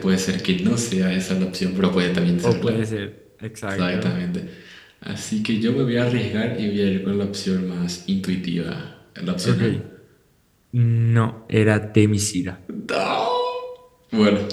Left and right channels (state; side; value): identical; both; correlation 1.00